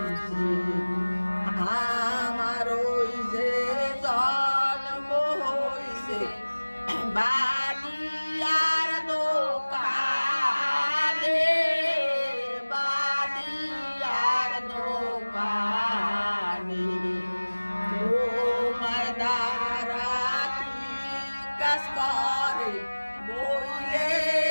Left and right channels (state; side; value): inverted; both; correlation -1.00